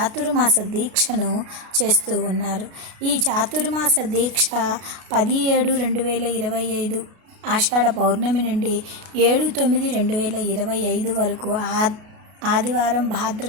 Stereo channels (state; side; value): late; left; 33 ms